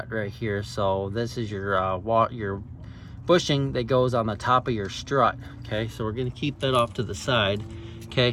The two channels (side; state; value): both; identical; correlation 1.00